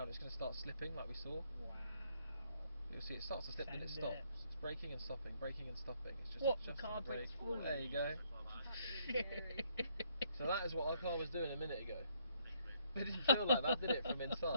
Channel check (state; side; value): inverted; both; correlation -0.70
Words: It's going to start slipping like we saw. Wow. You'll see it starts to slip, then it Send stops. it. It's braking and stopping, braking and stopping. It's just What? The adjusting car brake. brakes falling? There you go. So that is what our car was doing a minute ago. It didn't feel like that, did it, from